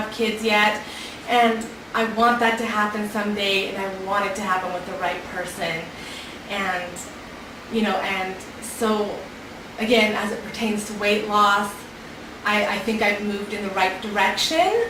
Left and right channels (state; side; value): identical; both; correlation 1.00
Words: kids yet, and I want that to happen someday, and I want it to happen with the right person. And and so again, as it pertains to weight loss, I think I've moved in the right direction,